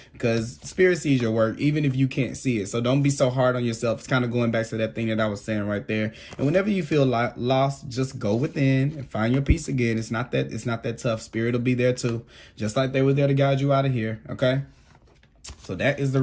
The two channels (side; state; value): both; identical; correlation 1.00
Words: Because spirit sees your work, even if you can't see it. So don't be so hard on yourself. It's kind of going back to that thing that I was saying right there. And whenever you feel lost, just go within and find your peace again. It's not that tough. Spirit will be there too, just like they were there to guide you out of here, okay? So that is the